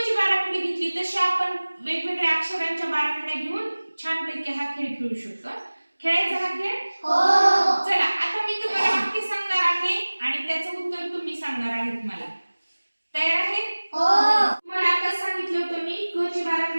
ची बाराखडी घेतली तशी आपण वेगवेगळ्या अक्षरांच्या बाराखड्या घेऊन छानपैकी हा खेळ खेळू शकतो. खेळायचा हा खेळ? हो. चला, आता मी तुम्हाला वाक्य सांगणार आहे आणि त्याचं उत्तर तुम्ही सांगणार आहेत मला. तयार आहे? हो. तुम्हाला आता सांगितलं होतं मी क ची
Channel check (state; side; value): inverted; both; correlation -1.00